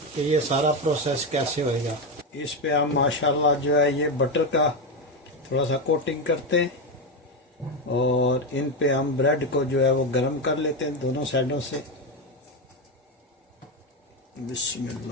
कि ये सारा प्रोसेस कैसे होएगा। इस पे हम माशाल्लाह जो है ये बटर का थोड़ा सा कोटिंग करते हैं और इन पे हम ब्रेड को जो है वो गरम कर लेते हैं दोनों साइडों से।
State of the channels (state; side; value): normal; both; correlation 0.12